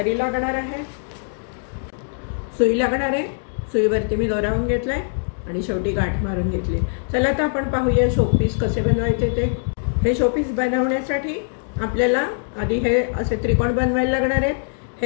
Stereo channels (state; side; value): silent; right; digital silence